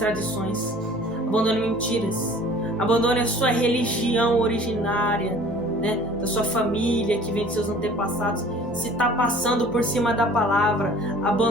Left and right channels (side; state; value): both; normal; correlation 0.49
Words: abandone mentiras, abandone a sua religião originária, da sua família que vem de seus antepassados. Se está passando por cima da palavra,